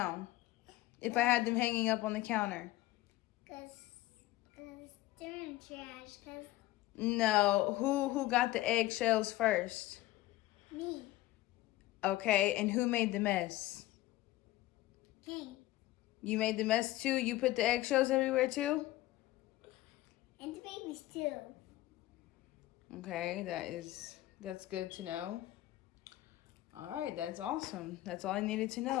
if I had them hanging up on the counter? Because they're in trash. Because No, who got the eggshells first? me, Okay, and who made the mess? King, You made the mess too? You put the eggshells everywhere too? and the babies too. Okay, that's good to know. All right, that's awesome. That's all I needed to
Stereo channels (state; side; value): quieter; right; 16.8 dB